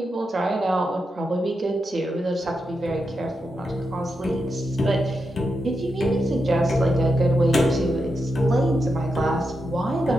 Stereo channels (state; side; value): normal; both; correlation 0.86